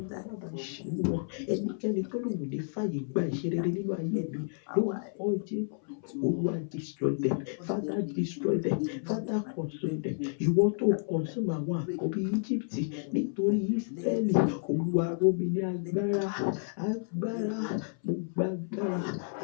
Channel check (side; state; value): right; silent; 57 dB below the other